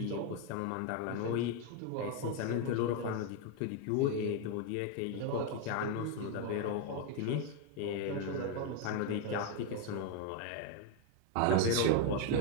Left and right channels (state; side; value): different; both; correlation 0.01